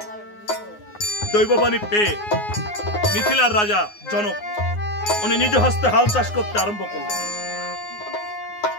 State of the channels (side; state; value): right; late; 9.6 ms